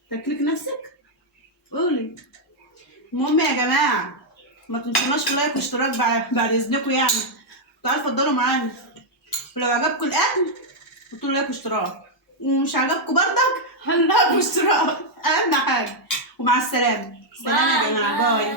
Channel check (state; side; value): normal; both; correlation -0.02